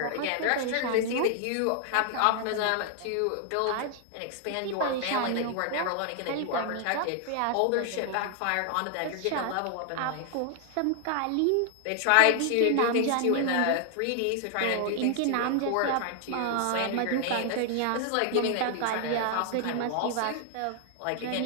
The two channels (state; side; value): different; both; correlation 0.00